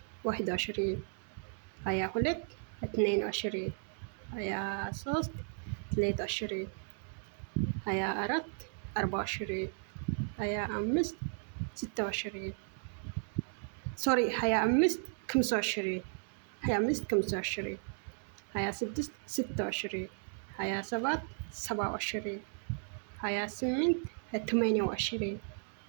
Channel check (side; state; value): left; silent; 54 dB below the other